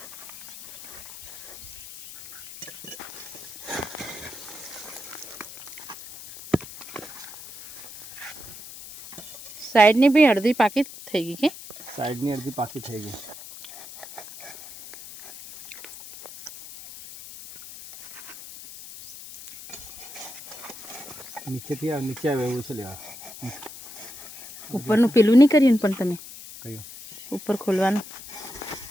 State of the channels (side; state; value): left; noise; hiss, 14 dB below the sound